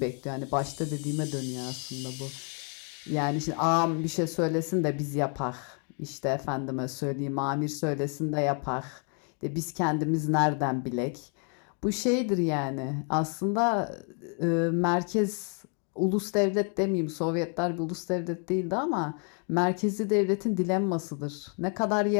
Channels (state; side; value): quieter; right; 39.6 dB